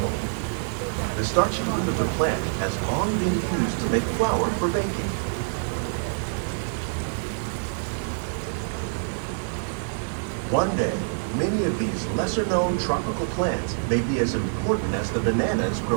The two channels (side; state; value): left; silent; digital silence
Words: The starchy root of the plant has long been used to make flour for baking. One day, many of these lesser-known tropical plants may be as important as the bananas